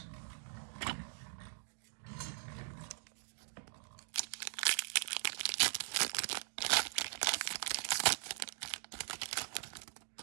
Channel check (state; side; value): silent; left; digital silence